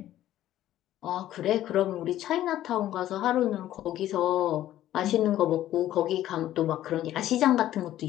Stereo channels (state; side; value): quieter; right; 13.1 dB